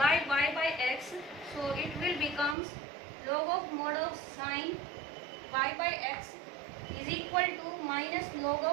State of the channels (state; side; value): drops out; left; at 2.6 s